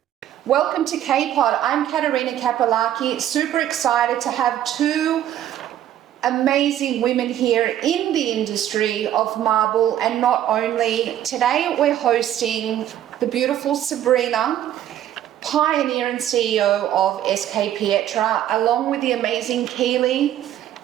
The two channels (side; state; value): left; quieter; 11.6 dB